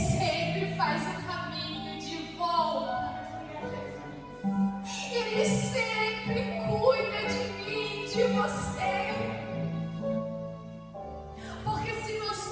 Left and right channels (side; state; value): both; identical; correlation 1.00